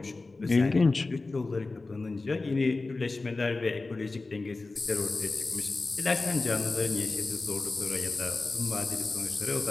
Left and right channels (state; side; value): quieter; right; 3.5 dB